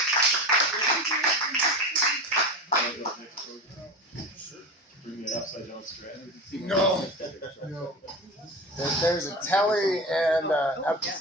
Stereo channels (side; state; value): both; normal; correlation 0.28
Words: Bring it upside down strand. No. There's a telly and an